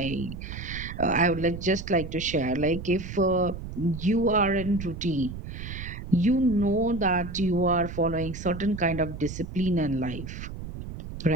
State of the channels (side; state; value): right; noise; rumble, 9 dB below the sound